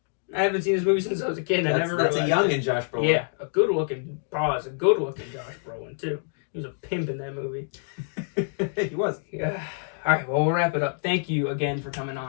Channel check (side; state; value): right; silent; digital silence